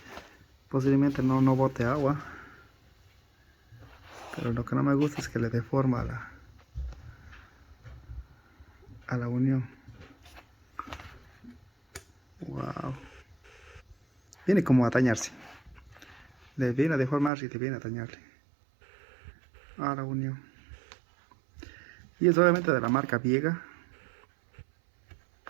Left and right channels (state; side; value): drops out; left; at 17.3 s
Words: Posiblemente no bote agua. Pero lo que no me gusta es que le deforma a la unión. Wow. Viene como a dañarse. Le viene a deformar y le viene a dañarle a la unión. Y es obviamente de la marca Viega.